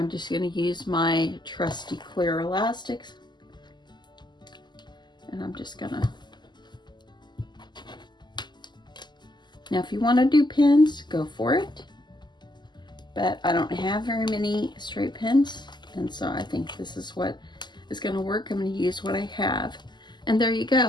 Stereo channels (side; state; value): right; late; 0.21 ms